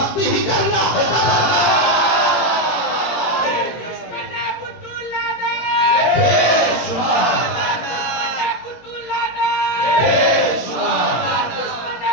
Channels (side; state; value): right; late; 17 ms